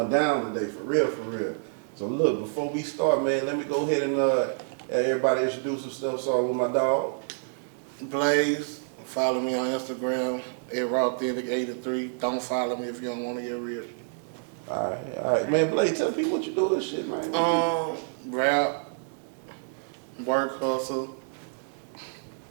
down today, for real. So look, before we start, man, let me go ahead and have everybody introduce themselves. So with my dog. Blaze, follow me on Instagram, @rawthentic83. Don't follow me if you don't want to get rich. Alright, man, Blaze, tell people what you do and shit, man. Rap, work, hustle,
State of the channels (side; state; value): left; silent; digital silence